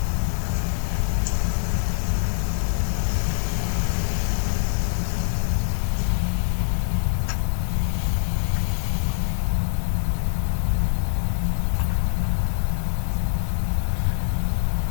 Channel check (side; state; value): right; silent; 62 dB below the other